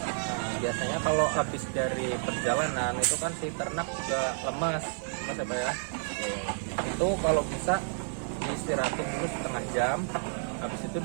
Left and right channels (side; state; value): left; silent; 58 dB below the other